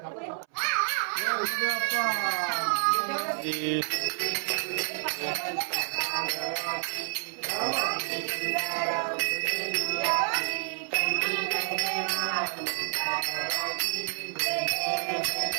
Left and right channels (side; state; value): left; silent; 58 dB below the other